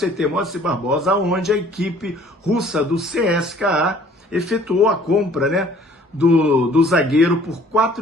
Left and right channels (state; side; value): normal; both; correlation 0.55